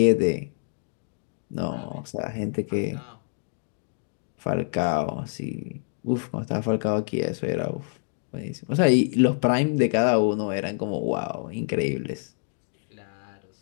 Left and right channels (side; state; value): right; silent; digital silence